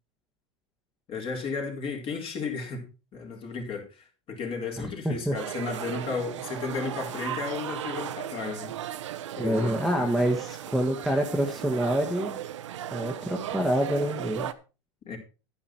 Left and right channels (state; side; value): normal; both; correlation 0.67